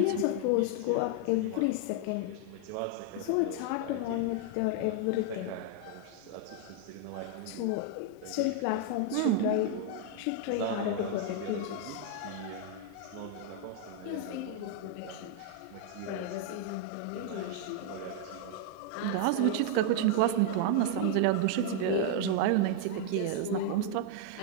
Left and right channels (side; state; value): both; different; correlation 0.00